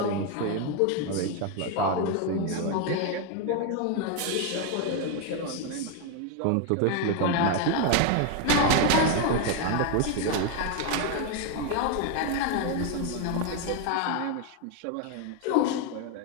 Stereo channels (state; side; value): different; both; correlation 0.01